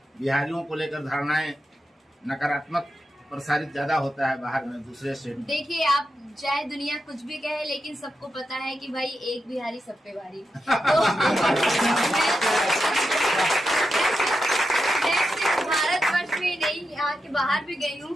बिहारियों को लेकर धारणाएं नकारात्मक प्रसारित ज्यादा होता है बाहर में, दूसरे स्टेट में। देखिए, आप चाहे दुनिया कुछ भी कहे, लेकिन सबको पता है कि भाई एक बिहारी सब पे भारी। तो मैं सिर्फ भारतवर्ष में नहीं, यहाँ के बाहर भी गई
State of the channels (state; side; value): normal; both; correlation 0.88